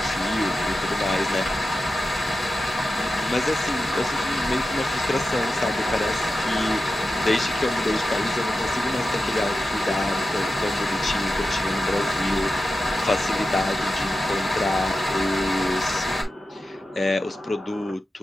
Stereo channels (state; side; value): normal; both; correlation 0.92